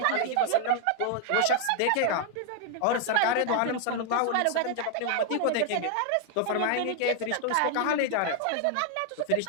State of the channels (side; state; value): both; different; correlation 0.00